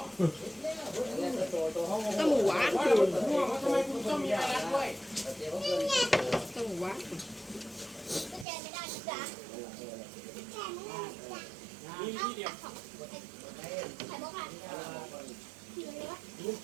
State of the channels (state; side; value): drops out; left; at 8.5 s